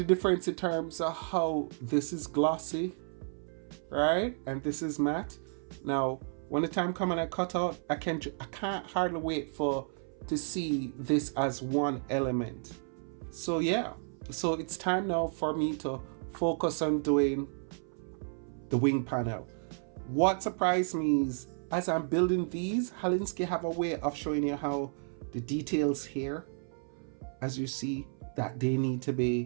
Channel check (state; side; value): silent; left; 56 dB below the other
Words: difference in terms of how this is glossy, right? And this is matte. Now, when the time comes and I cut out, I can't hardly wait to see this as one element. So yeah, so it's time now for me to focus on doing the wing panel. What surprised me is, as I'm building these, Halinski have a way of showing you how the details here, as you see, that they need to